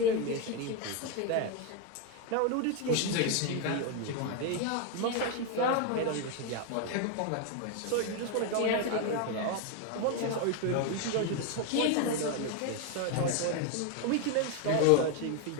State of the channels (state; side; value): different; both; correlation 0.01